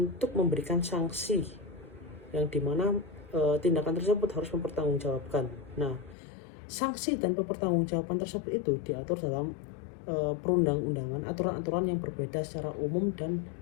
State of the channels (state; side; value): drops out; right; at 6.2 s